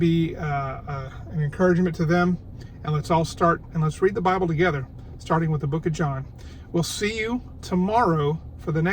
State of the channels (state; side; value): identical; both; correlation 1.00